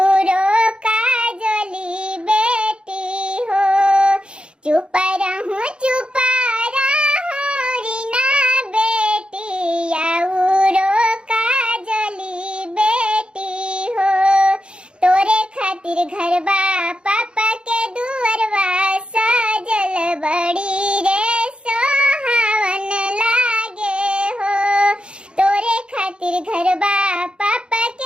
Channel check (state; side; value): late; left; 0.055 ms